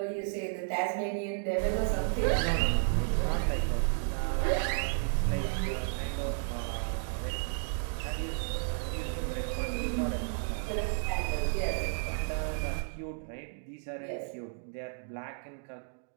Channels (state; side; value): silent; left; digital silence